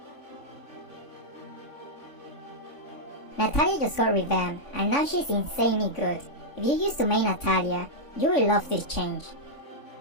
Natalia just got revamped and now she's insanely good. If you used to main Natalia, you will love this change.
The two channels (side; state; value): right; late; 3.5 ms